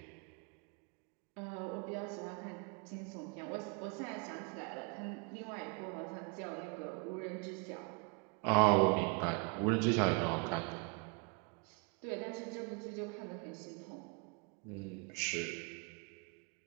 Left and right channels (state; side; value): quieter; left; 33.1 dB